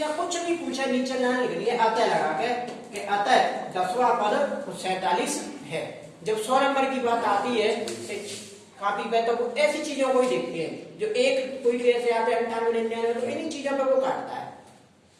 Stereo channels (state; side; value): identical; both; correlation 1.00